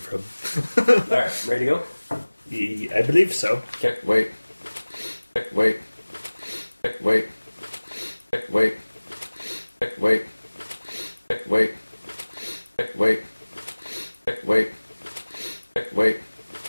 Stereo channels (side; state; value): both; inverted; correlation -1.00